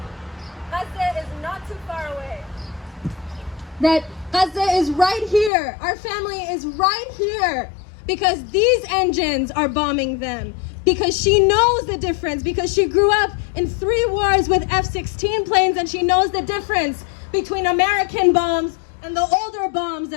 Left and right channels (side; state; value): right; drops out; at 5.5 s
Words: Gaza is not too far away. That Gaza is right here. Our family is right here because these engines are bombing them. Because she knows the difference, because she grew up in 3 wars with F-16 planes and she knows the difference between American bombs and the older bombs